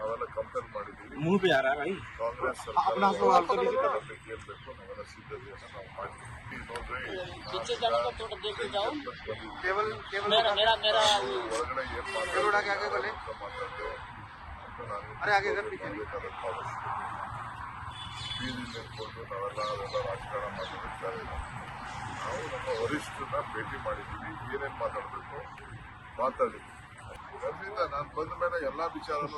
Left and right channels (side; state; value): both; identical; correlation 1.00